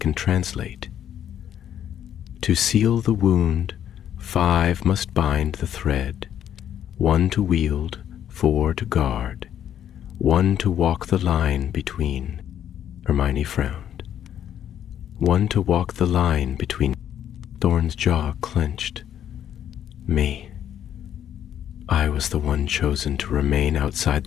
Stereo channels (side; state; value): right; quieter; 10.1 dB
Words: translate. To seal the wound, 5 must bind the thread, 1 to wield, 4 to guard, 1 to walk the line between." Hermione frowned. "1 to walk the line between." Thorn's jaw clenched. "Me. I was the one chosen to remain outside